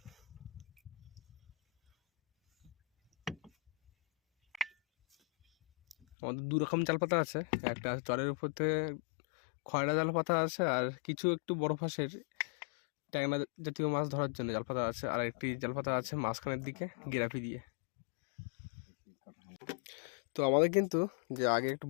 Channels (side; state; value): right; drops out; at 6.0 s